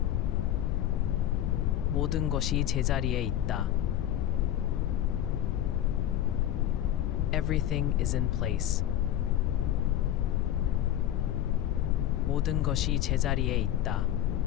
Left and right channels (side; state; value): right; quieter; 11.9 dB